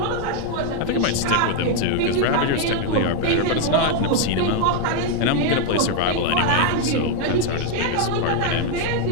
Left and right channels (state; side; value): different; both; correlation 0.01